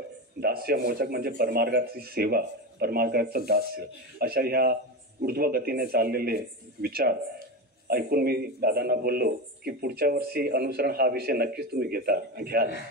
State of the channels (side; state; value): both; normal; correlation 0.20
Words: दास्यमोचक म्हणजे परमार्गाची सेवा, परमार्गाचं दास्य, अशा ह्या ऊर्ध्वगतीने चाललेले विचार ऐकून मी दादांना बोललो की पुढच्या वर्षी अनुसरण हा विषय नक्कीच तुम्ही घ्याल.